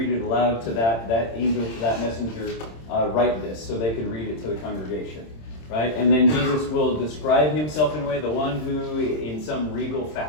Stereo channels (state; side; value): late; right; 26 ms